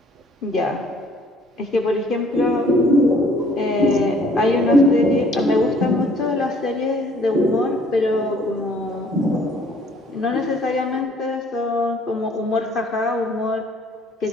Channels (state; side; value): normal; both; correlation 0.59